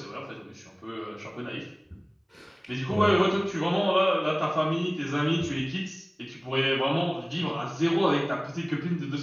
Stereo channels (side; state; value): both; identical; correlation 1.00